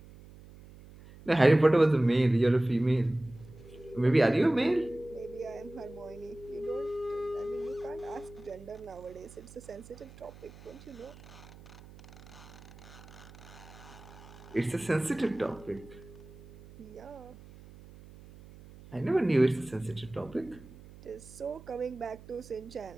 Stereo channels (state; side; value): noise; right; hum, 19 dB below the sound